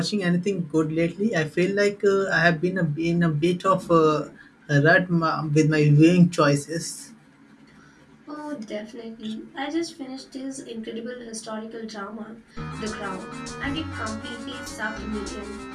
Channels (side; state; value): both; identical; correlation 1.00